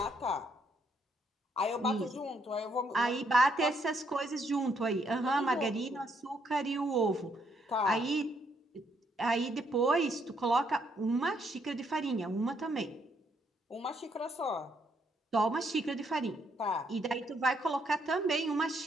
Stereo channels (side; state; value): both; normal; correlation 0.73